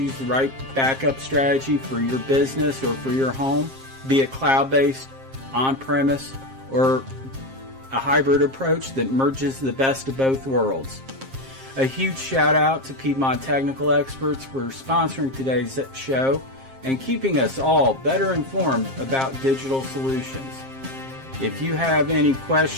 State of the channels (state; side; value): late; left; 7.5 ms